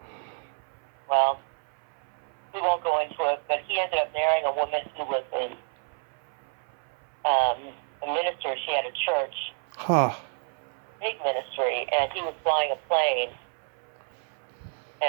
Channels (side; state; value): left; silent; 59 dB below the other